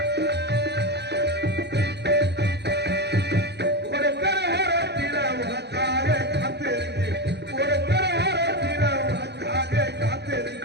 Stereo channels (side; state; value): left; late; 0.49 ms